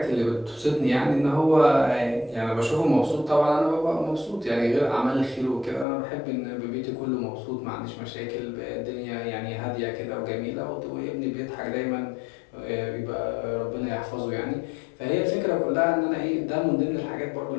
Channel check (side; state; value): right; drops out; at 5.9 s